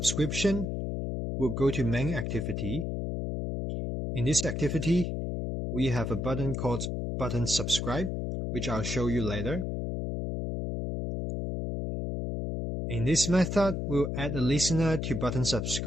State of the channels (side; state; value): left; noise; hum, 2 dB below the sound